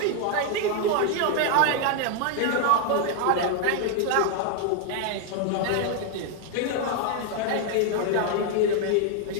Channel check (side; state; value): both; different; correlation 0.00